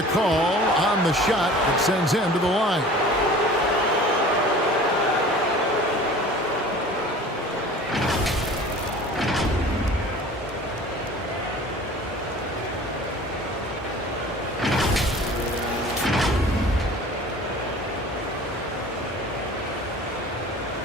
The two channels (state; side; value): normal; both; correlation 0.43